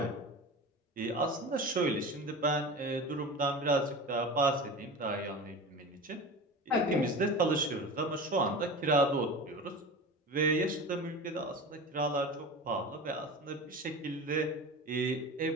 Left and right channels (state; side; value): normal; both; correlation 0.31